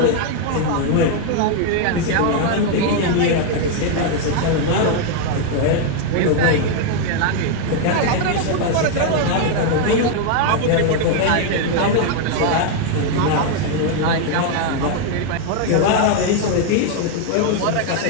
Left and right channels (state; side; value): different; both; correlation 0.00